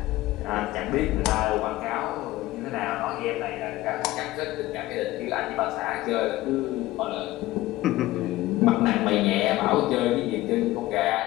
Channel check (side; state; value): right; quieter; 17.2 dB